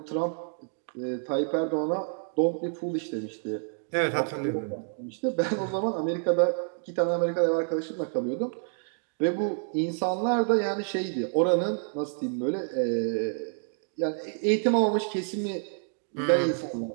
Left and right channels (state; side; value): silent; left; digital silence